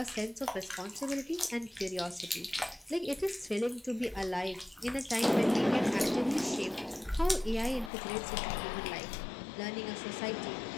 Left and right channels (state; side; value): drops out; right; at 7.9 s